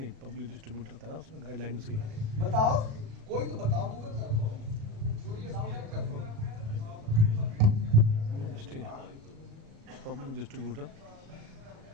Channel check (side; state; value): left; late; 36 ms